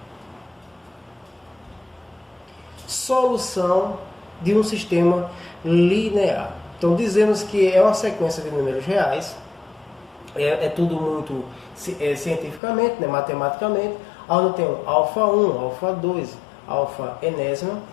Solução de um sistema linear. Então, dizemos que é uma sequência de números reais. É tudo muito cientificamente, né, matematicamente. Onde tem um alfa 1, alfa 2, alfa enésima.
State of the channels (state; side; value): drops out; right; at 12.6 s